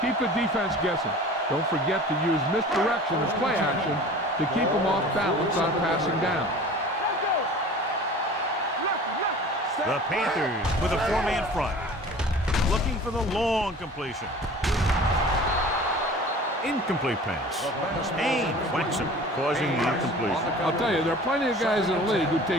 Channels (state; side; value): normal; both; correlation 0.42